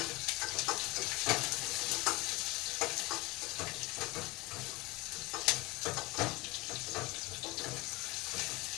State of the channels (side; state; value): right; quieter; 22.3 dB